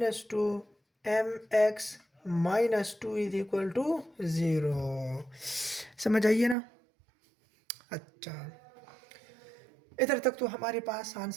2mx minus 2 is equal to 0। समझ आइए ना। अच्छा, इधर तक तो हमारे पास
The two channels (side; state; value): left; drops out; at 6.6 s